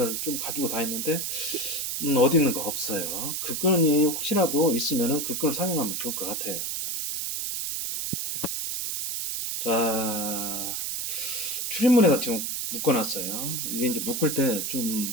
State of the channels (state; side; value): noise; right; hiss, 2 dB below the sound